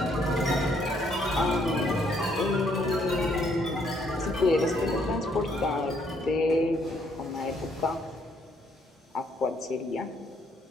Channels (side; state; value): both; normal; correlation 0.69